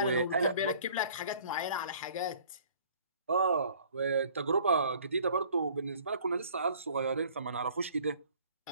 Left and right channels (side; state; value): both; inverted; correlation -0.54